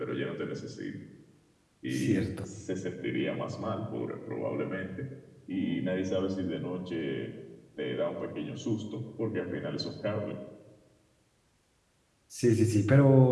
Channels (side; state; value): both; identical; correlation 1.00